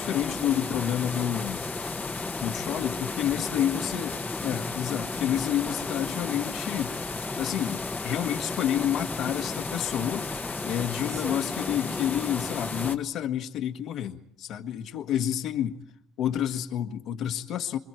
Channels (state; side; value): quieter; right; 7.5 dB